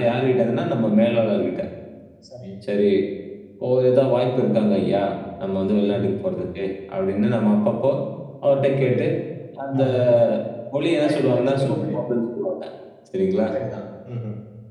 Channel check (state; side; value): identical; both; correlation 1.00